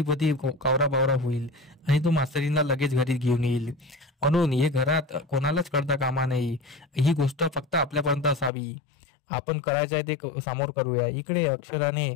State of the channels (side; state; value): right; drops out; at 8.5 s